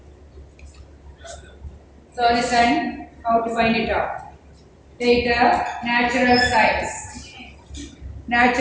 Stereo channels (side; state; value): both; identical; correlation 1.00